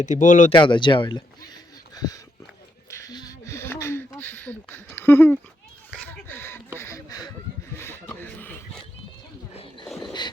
ती बोलवते आता जेवायला.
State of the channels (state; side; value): normal; both; correlation 0.80